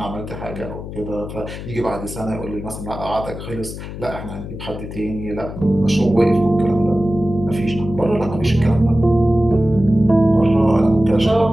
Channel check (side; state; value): left; noise; hum, 10 dB below the sound